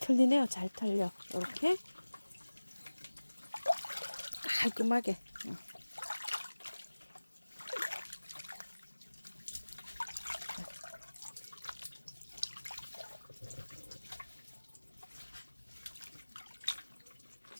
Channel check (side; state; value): both; inverted; correlation -1.00